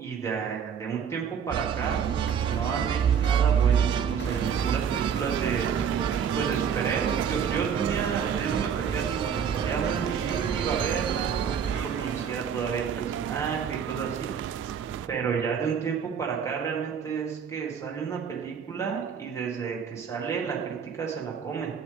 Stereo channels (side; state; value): left; quieter; 7.4 dB